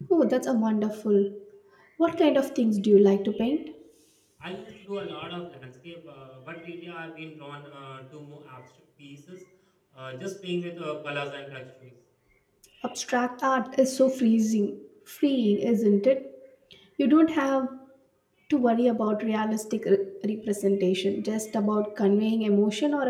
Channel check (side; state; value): both; identical; correlation 1.00